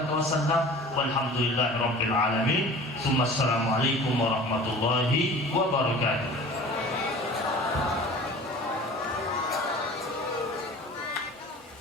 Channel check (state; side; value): normal; both; correlation 0.42